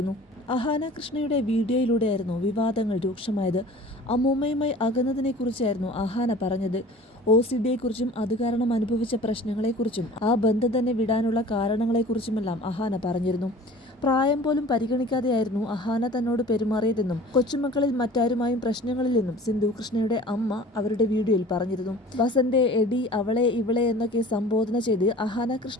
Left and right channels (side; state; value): both; normal; correlation 0.44